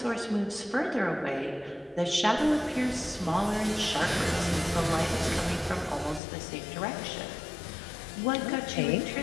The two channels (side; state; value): right; drops out; at 6.2 s